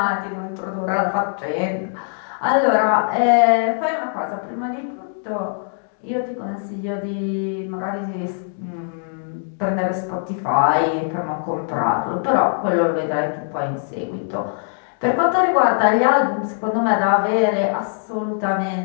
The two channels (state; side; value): silent; right; digital silence